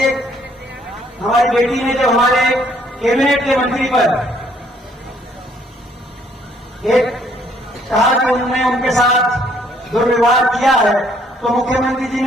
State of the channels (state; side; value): normal; both; correlation 0.65